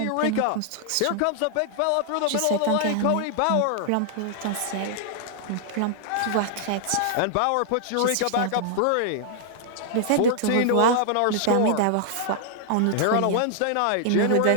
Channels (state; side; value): different; both; correlation -0.01